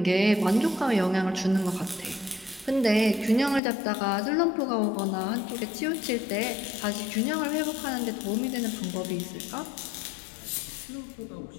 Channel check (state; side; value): drops out; right; at 3.6 s